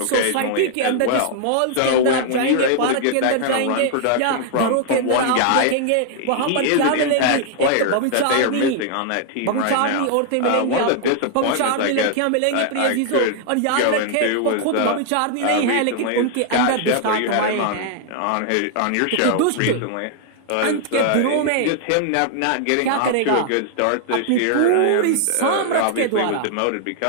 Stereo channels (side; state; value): both; different; correlation 0.00